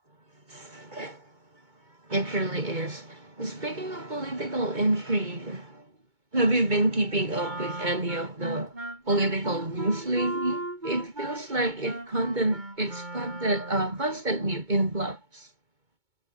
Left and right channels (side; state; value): left; late; 2.2 ms